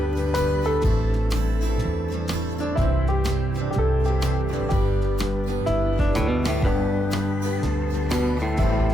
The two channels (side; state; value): both; normal; correlation 0.83